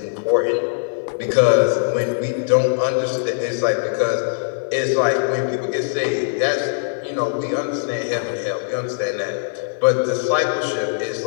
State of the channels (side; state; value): right; silent; 62 dB below the other